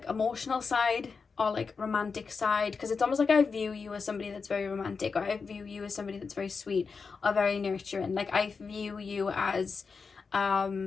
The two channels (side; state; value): right; quieter; 5.1 dB